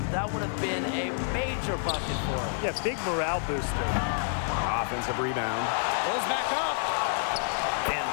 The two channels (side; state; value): right; silent; 59 dB below the other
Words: that would have been a major bucket for them. Yeah, big morale booster. Offensive rebound. Goes back up. And